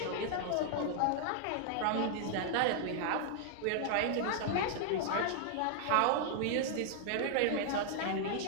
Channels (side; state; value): both; different; correlation -0.01